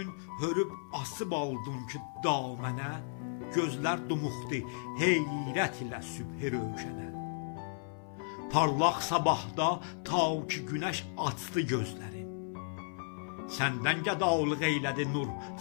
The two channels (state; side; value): silent; right; 55 dB below the other